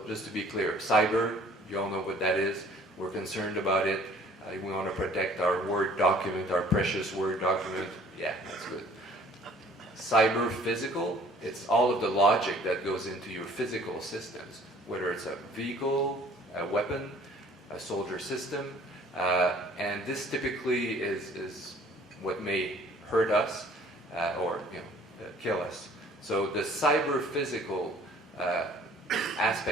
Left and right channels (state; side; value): normal; both; correlation 0.54